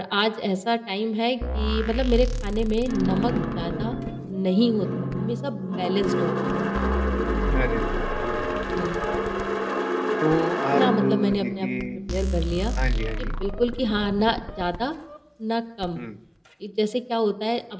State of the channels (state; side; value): identical; both; correlation 1.00